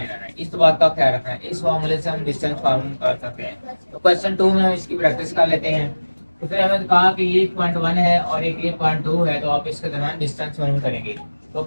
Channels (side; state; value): both; inverted; correlation -1.00